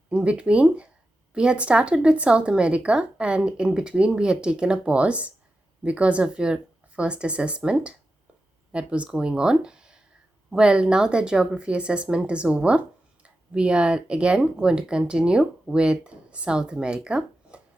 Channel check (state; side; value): normal; both; correlation 0.91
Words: In between, we had started with South America, and in between, we had taken a pause because of your first assessment that was going on. Well, now that geography assessment is over, we are again going to continue with South America.